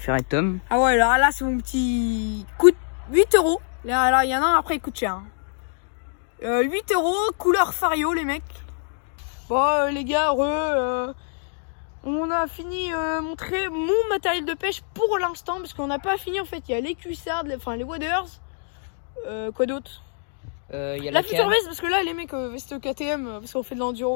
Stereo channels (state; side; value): silent; right; digital silence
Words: être Tom. Ah ouais, alors là, c'est mon petit coûte 8 euros. Là, il y en a un après, il coûte cher. 8 euros, couleur Fario, les mecs. Bon, les gars, on a fini montrer mon matériel de pêche pour l'instant, parce qu'on n'a pas fini, en fait. Il y a les cuissards, les waders. Quoi d'autre? Il y a La la future canne. veste, parce que là, les mecs, veste KTM, parce qu'on fait de l'enduro